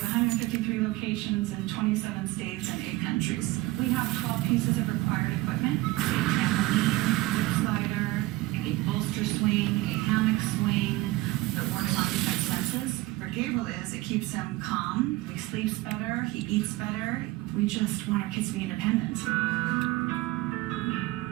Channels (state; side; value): quieter; left; 19.0 dB